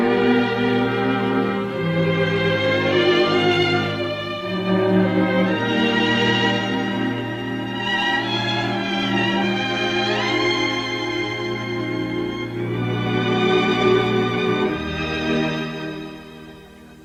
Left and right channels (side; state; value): both; identical; correlation 1.00